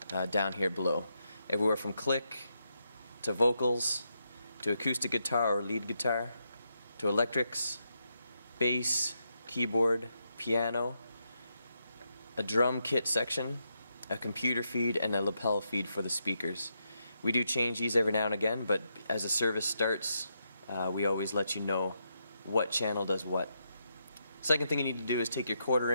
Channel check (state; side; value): inverted; both; correlation -0.82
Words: down here below. Everywhere from click to vocals to acoustic guitar or lead guitar to electrics, bass, keyboard, piano, a drum kit section, a computer feed, and a lapel feed for the speakers. We do change these every now and again, but as the service starts, we always let you know what channel does what. Second thing you need to do is take your